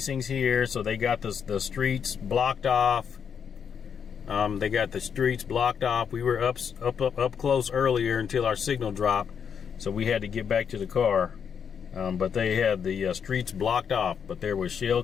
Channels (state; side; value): quieter; right; 7.3 dB